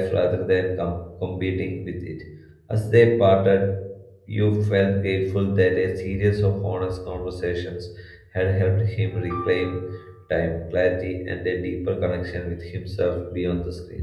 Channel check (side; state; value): both; identical; correlation 1.00